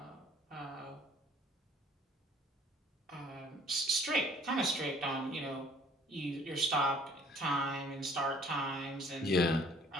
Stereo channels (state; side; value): normal; both; correlation 0.56